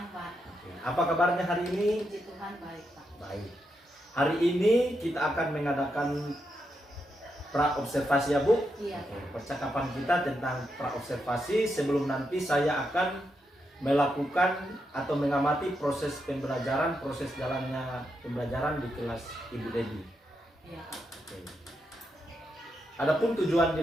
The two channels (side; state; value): both; normal; correlation 0.83